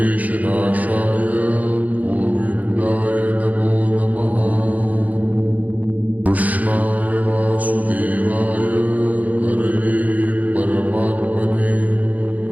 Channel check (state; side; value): late; left; 0.077 ms